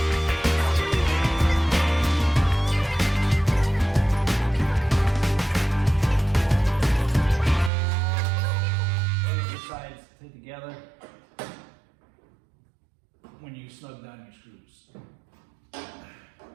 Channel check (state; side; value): drops out; left; at 7.7 s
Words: Sides fit together when you snug down your screws.